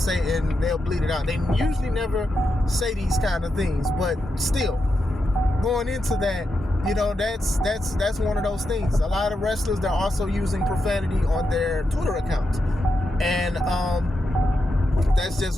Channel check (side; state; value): both; normal; correlation 0.86